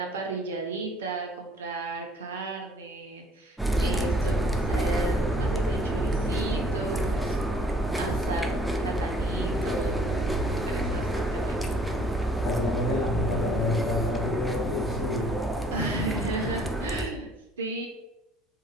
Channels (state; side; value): normal; both; correlation 0.58